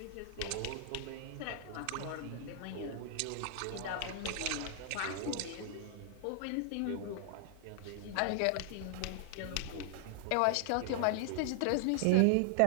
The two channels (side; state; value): both; different; correlation 0.00